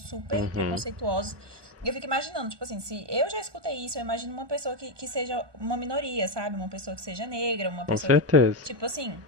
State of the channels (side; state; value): left; late; 1.2 ms